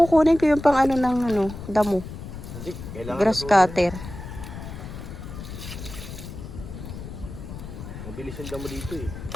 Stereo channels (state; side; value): noise; left; rumble, 10 dB below the sound